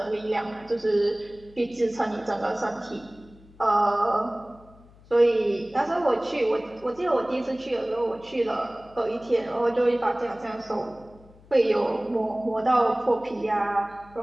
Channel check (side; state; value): left; noise; hum, 25 dB below the sound